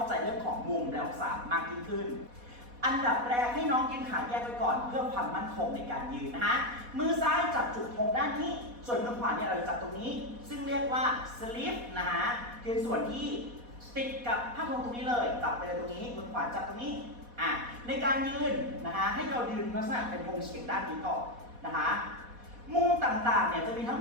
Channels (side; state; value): left; late; 4.1 ms